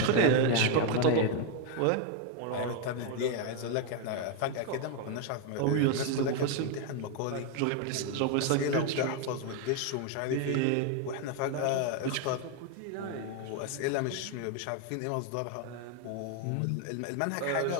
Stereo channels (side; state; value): both; different; correlation 0.01